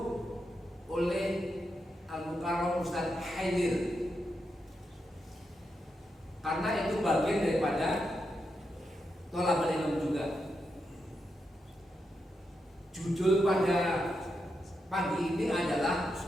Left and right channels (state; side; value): normal; both; correlation 0.85